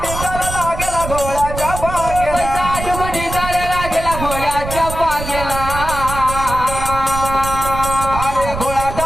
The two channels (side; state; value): right; noise; rumble, 7 dB below the sound